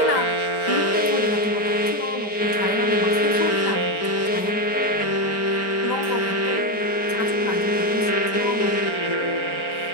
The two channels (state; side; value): late; right; 4.4 ms